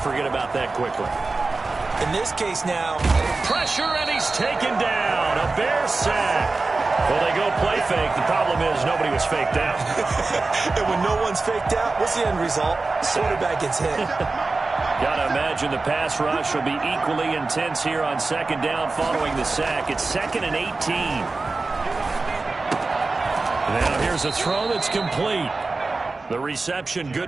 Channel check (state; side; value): quieter; left; 3.6 dB